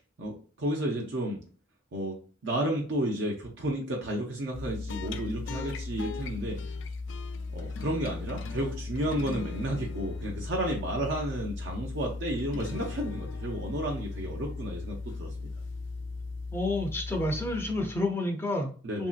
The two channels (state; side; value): normal; both; correlation 0.56